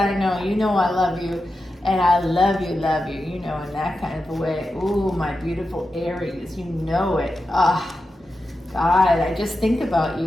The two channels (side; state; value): both; normal; correlation 0.90